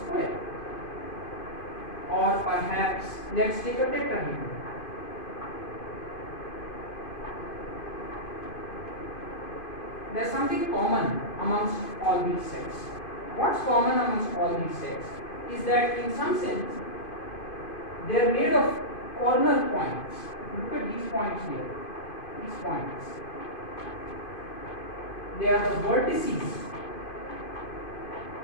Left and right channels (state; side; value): late; right; 2.5 ms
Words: Or perhaps let's take a tetrahedron. There's something common amongst all these sets. What's common amongst all these sets is that in some sense they are made of corner points. Look at these points here. These points. They are the vertices